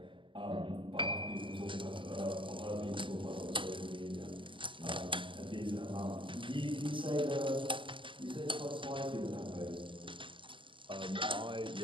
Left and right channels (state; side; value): late; left; 0.24 ms